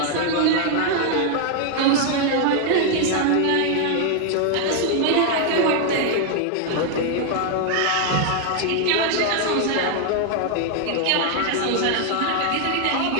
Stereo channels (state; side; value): different; both; correlation 0.00